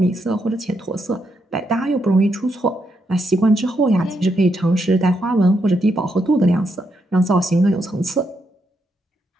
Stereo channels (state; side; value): normal; both; correlation 0.79